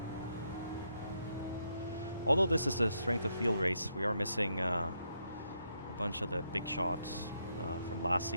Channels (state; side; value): inverted; both; correlation -0.78